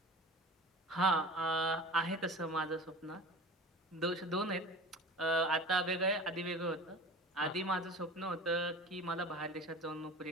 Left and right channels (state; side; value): normal; both; correlation 0.37